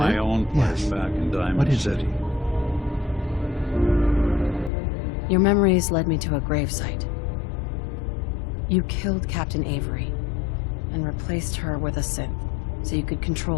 own place back in Diamond City. Your memories led me to a gravesite. You killed Captain Avery and replaced her with a synth so you could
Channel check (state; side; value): drops out; right; at 4.7 s